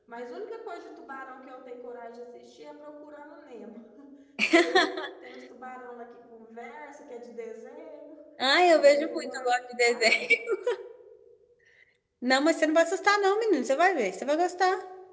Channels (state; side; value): identical; both; correlation 1.00